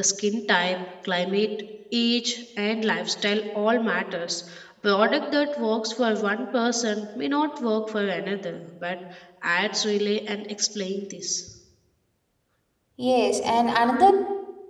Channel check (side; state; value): both; identical; correlation 1.00